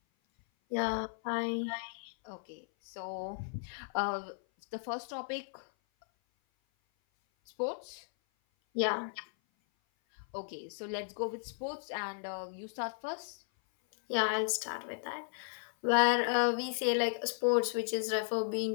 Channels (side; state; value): right; silent; 54 dB below the other